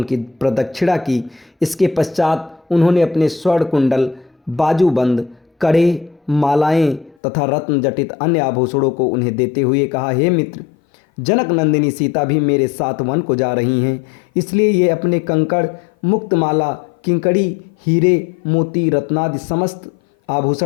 प्रदक्षिणा की। इसके पश्चात उन्होंने अपने स्वर्ण कुंडल, बाजूबंद, कड़े, मालाएं तथा रत्न जटित अन्य आभूषणों को उन्हें देते हुए कहा, हे मित्र, जनक नंदिनी सीता भी मेरे साथ वन को जा रही हैं, इसलिए ये अपने कंकड़, मुक्तमाला, किंकड़ी, हीरे, मोती, रत्नादि समस्त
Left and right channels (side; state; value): right; drops out; at 7.2 s